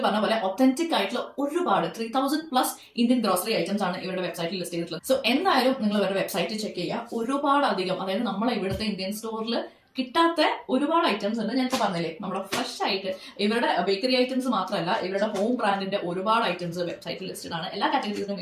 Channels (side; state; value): both; identical; correlation 1.00